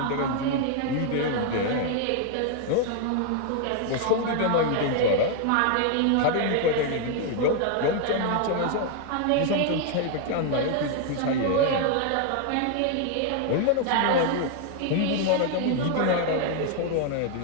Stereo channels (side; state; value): both; different; correlation 0.00